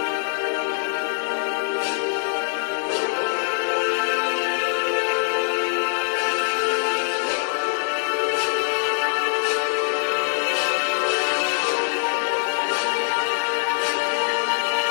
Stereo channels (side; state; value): right; silent; digital silence